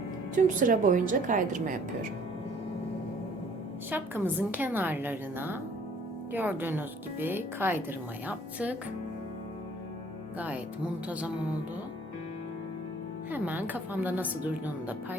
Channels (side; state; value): both; normal; correlation 0.57